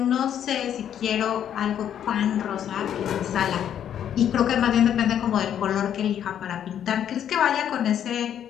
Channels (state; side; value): quieter; right; 9.8 dB